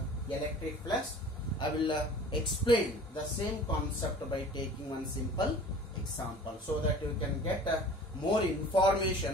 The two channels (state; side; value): normal; both; correlation 0.44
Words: electric flux. I will explain the same concept by taking one simple example so that you can get more